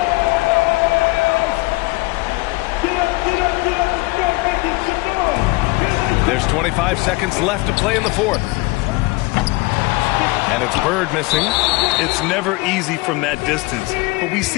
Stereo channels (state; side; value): quieter; right; 23.8 dB